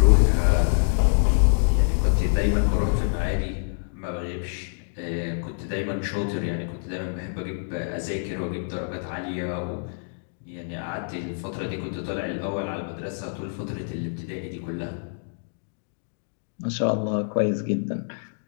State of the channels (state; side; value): silent; right; digital silence